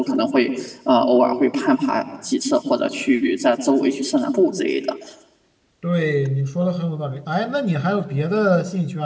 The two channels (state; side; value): identical; both; correlation 1.00